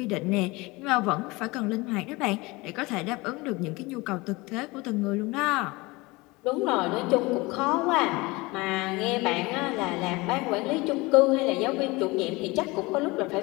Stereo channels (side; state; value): right; quieter; 23.3 dB